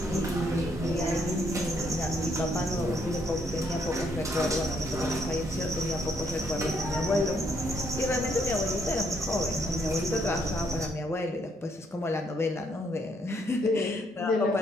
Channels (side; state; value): both; normal; correlation 0.72